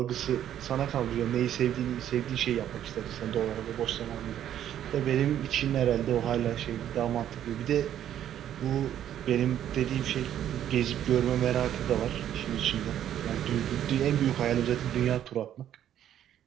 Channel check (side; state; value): left; quieter; 10.8 dB